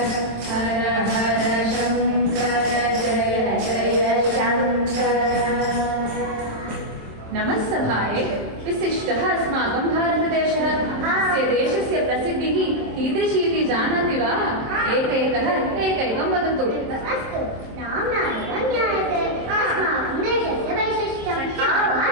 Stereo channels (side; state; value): left; late; 27 ms